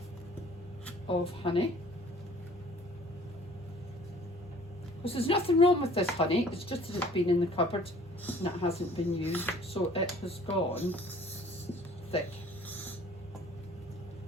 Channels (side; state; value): both; normal; correlation 0.53